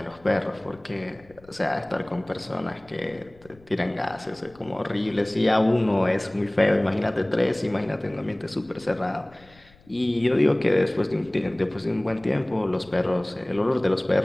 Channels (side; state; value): left; noise; rumble, 27 dB below the sound